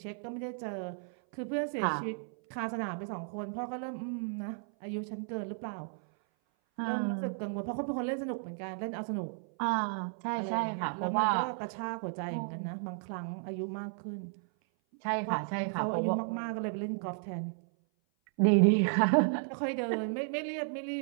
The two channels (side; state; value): left; silent; 55 dB below the other